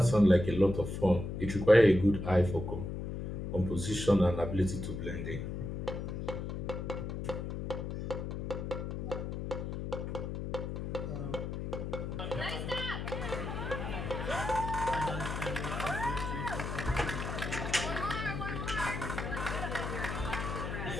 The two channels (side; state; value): left; noise; hum, 4 dB below the sound